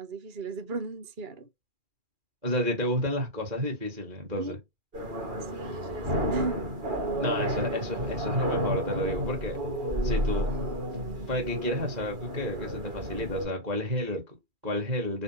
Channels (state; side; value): late; left; 2.4 ms